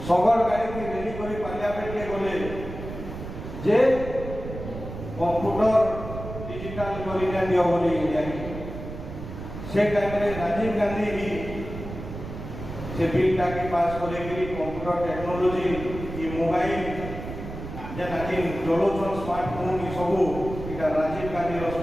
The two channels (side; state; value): right; noise; rumble, 9 dB below the sound